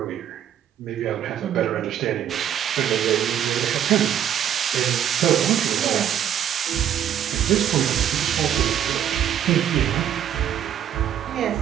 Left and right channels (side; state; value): left; quieter; 10.0 dB